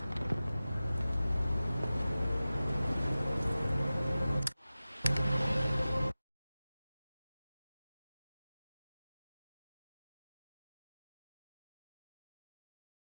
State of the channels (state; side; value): inverted; both; correlation -0.96